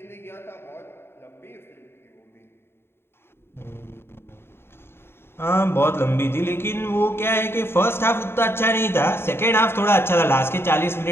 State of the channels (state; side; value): late; right; 0.11 ms